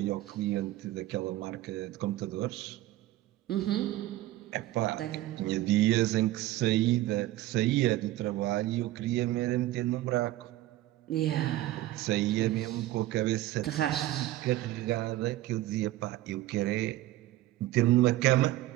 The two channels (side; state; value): left; quieter; 15.8 dB